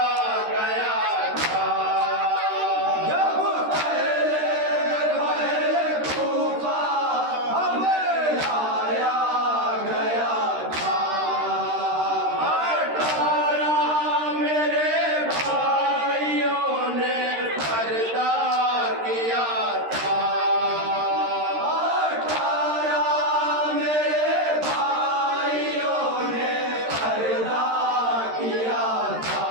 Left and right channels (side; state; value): left; late; 13 ms